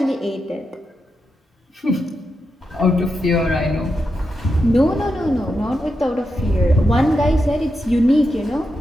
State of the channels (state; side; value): normal; both; correlation 0.86